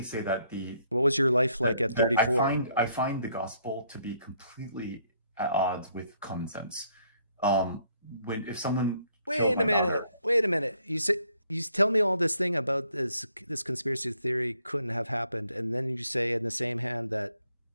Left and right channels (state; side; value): inverted; both; correlation -0.69